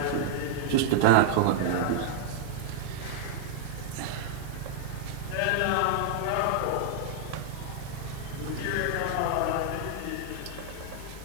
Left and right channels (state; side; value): different; both; correlation -0.01